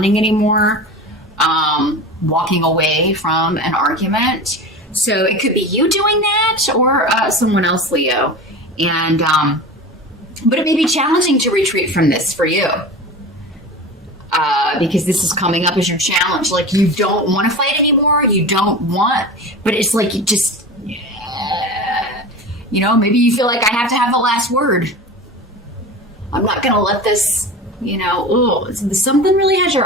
anymore, walking away from an argument. So it could be you doing that, or someone else, Leo. And but it may be challenging to retreat from this for you, because this is coming up as your challenge. Like, you don't want to fight anymore. You don't want, but it's like you just, maybe you feel like I have to have the last word. I'm not going to let this, something really has your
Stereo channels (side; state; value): both; normal; correlation 0.31